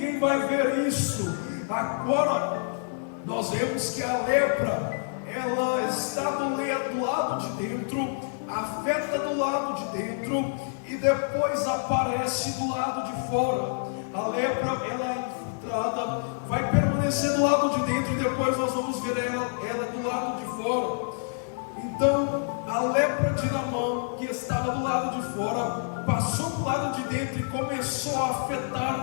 vai ver isso. Agora nós vemos que a lepra, ela está do lado de dentro, afeta do lado de dentro e depois aparece do lado de fora. A lepra, ela é infiltrada, vai permanecer do lado de dentro e depois nós vamos ver ela do lado de fora. Então, a lepra de Naamã, que estava do lado de fora, passou do lado de dentro e começou a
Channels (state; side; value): silent; right; digital silence